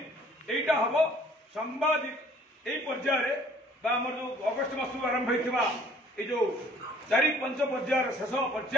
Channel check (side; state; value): both; normal; correlation 0.57